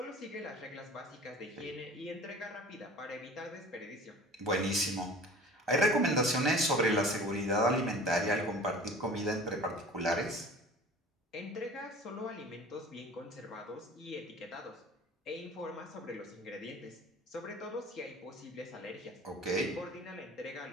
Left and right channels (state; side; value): normal; both; correlation 0.42